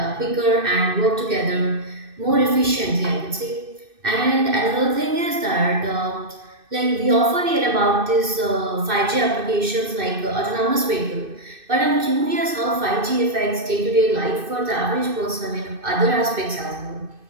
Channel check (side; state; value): left; late; 2.6 ms